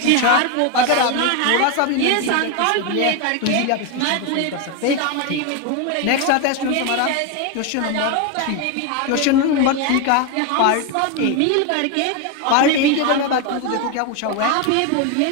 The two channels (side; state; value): both; different; correlation 0.02